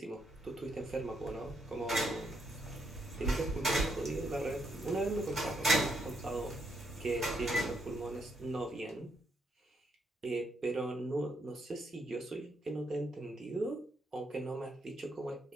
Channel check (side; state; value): both; normal; correlation 0.76